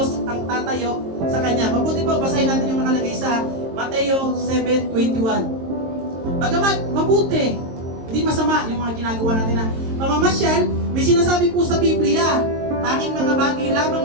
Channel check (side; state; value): left; late; 22 ms